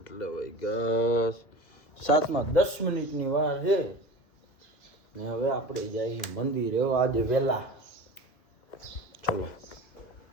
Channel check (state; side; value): late; right; 2.3 ms